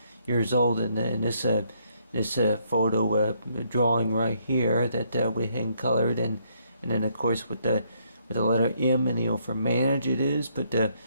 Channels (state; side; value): inverted; both; correlation -0.71